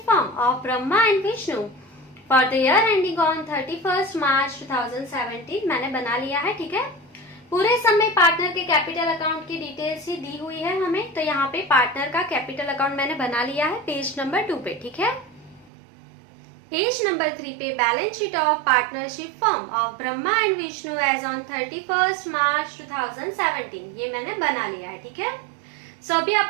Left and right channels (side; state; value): left; drops out; at 15.7 s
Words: firm of Brahma and Vishnu for the year ending on 31 March 2017 मैंने बना लिया है। ठीक है, पूरे सम में पार्टनर के कैपिटल अकाउंट की डिटेल्स ही दी हुई है हमें, तो यहाँ पे पार्टनर का कैपिटल अकाउंट मैंने बना लिया है पेज नंबर 2 पे। ठीक है, पेज नंबर 3 पे balance sheet of partnership firm of Brahma and Vishnu as on 31 March 2017 ये मैंने बना लिया है। ठीक है, सो अभी